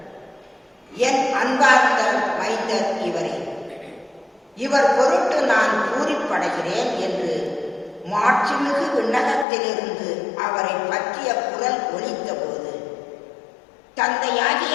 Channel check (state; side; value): drops out; right; at 9.5 s